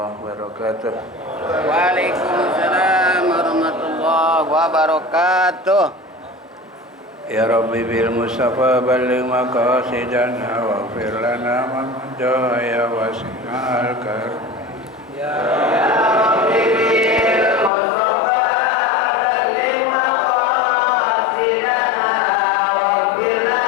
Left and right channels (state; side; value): drops out; right; at 17.7 s